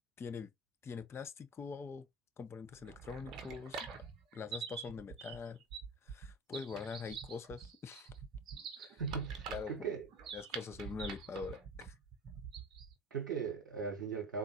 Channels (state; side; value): normal; both; correlation 0.34